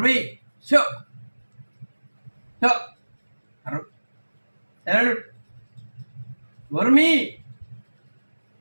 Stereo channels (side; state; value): both; inverted; correlation -1.00